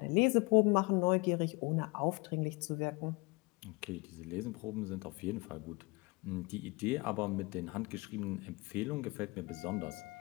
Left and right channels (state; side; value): quieter; right; 26.7 dB